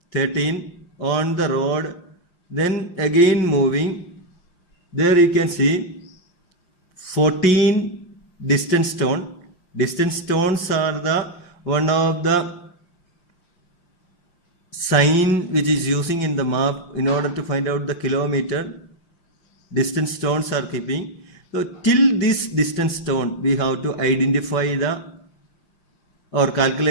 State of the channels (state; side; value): late; right; 5.7 ms